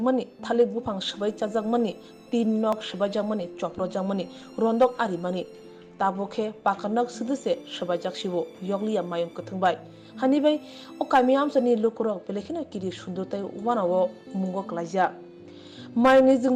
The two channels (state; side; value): identical; both; correlation 1.00